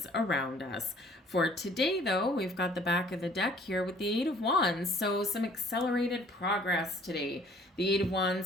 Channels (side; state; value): both; normal; correlation 0.56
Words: around us. For today, though, we've got the back of the deck here with the Eight of Wands, so some accelerated progress today. The Eight of